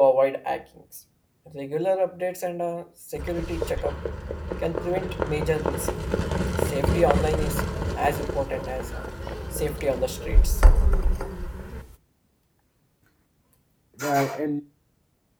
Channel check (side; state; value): both; identical; correlation 1.00